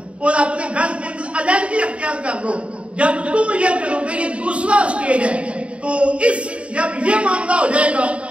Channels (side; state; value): left; late; 0.061 ms